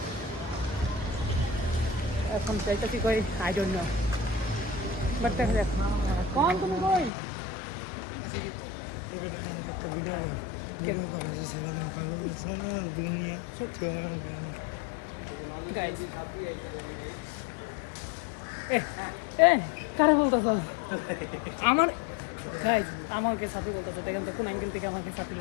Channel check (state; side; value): drops out; right; at 7.1 s